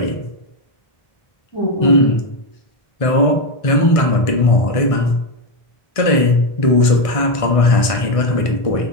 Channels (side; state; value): right; late; 1.5 ms